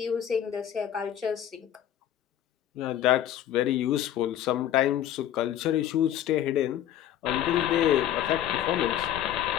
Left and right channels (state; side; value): quieter; right; 11.1 dB